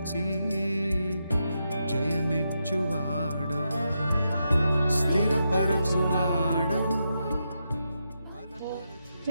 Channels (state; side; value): inverted; both; correlation -0.84